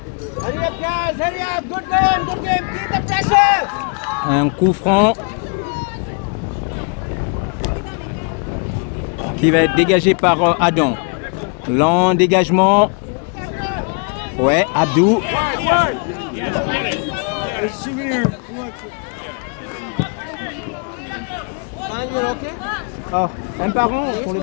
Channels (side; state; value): right; quieter; 37.5 dB